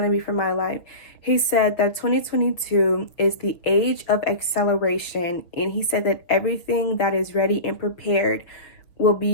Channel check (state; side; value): late; right; 6.1 ms